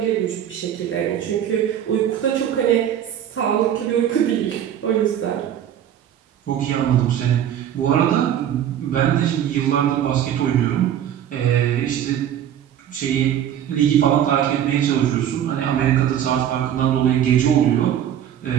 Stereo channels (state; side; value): quieter; left; 10.2 dB